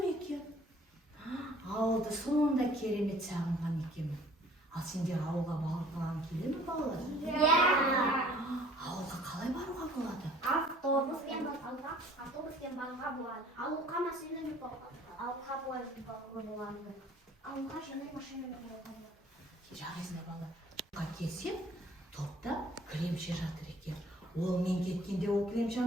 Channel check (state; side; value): normal; both; correlation 0.54